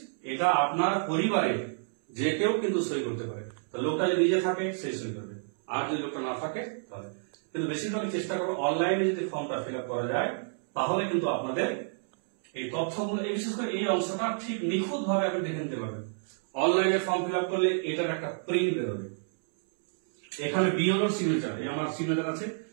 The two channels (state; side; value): silent; left; 58 dB below the other